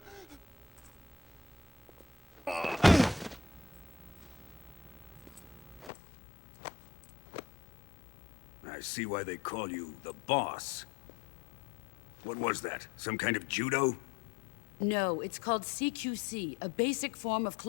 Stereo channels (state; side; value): drops out; right; at 5.9 s